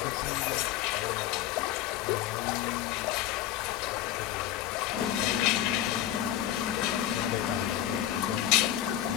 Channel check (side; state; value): right; quieter; 12.3 dB